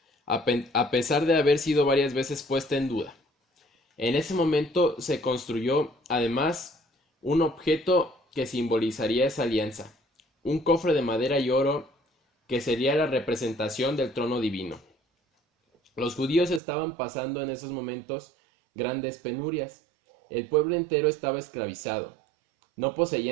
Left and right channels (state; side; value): drops out; left; at 16.6 s